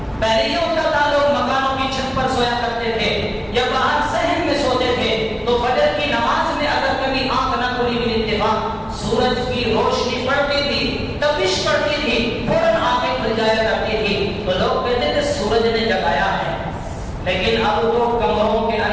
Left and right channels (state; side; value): identical; both; correlation 1.00